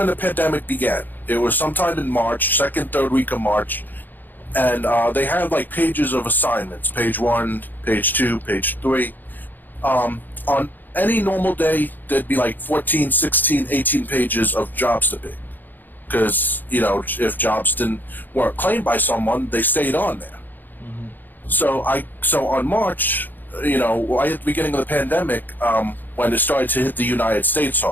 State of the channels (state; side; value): late; right; 0.088 ms